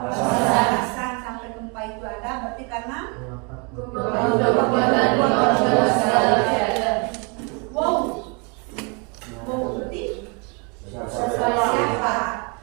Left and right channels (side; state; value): left; quieter; 33.4 dB